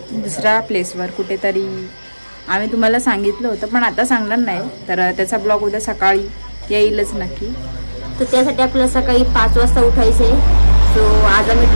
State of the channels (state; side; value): inverted; both; correlation -1.00